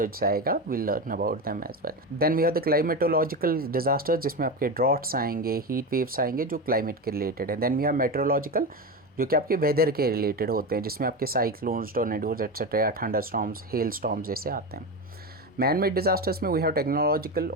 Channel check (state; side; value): normal; both; correlation 0.19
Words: आएगा. Will learn about them as well. Then we have the climatological disaster, जिसमें आपके ड्रॉट्स आएंगे, हीट वेव्स आएंगे, जो क्लाइमेट के रिलेटेड है. देन वी हैव मेट्रोलॉजिकल, जो कि आपके वेदर के रिलेटेड होते हैं, जिसमें आपके cyclones, tornadoes etcetera, thunder storms, hello storms जैसे आते हैं. मैन मेड डिज़ास्टर्स में वी हैव टेक्नोलॉजिकल